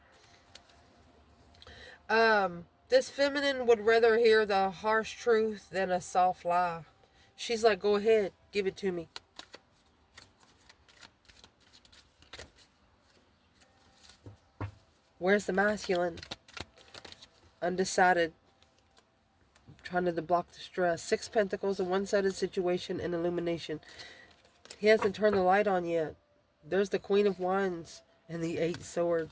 Wow. This feminine would rather hear the harsh truth than a soft lie. She's like, go ahead, give it to me. Where's the masculine? Undecided. Trying to block the stress. 6 pentacles, a one-sided situation, and illumination. He hasn't turned the light on yet. There's the Queen of Wands and the 8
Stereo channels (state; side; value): identical; both; correlation 1.00